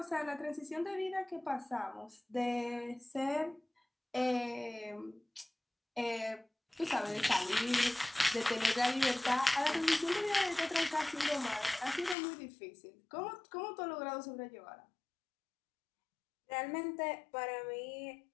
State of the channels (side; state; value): right; drops out; at 12.2 s